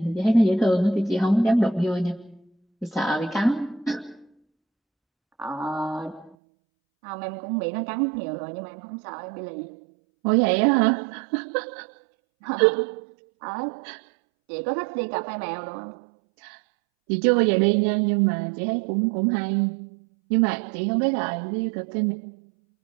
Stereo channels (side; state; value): left; drops out; at 6.4 s